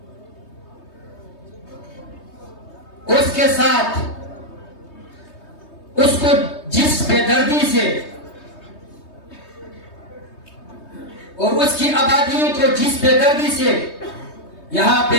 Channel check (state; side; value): late; right; 3.2 ms